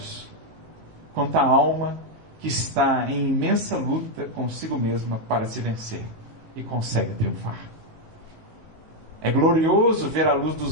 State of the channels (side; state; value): left; late; 19 ms